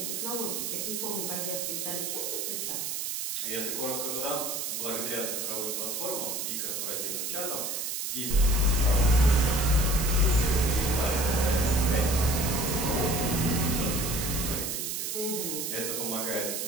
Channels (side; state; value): right; noise; hiss, 3 dB below the sound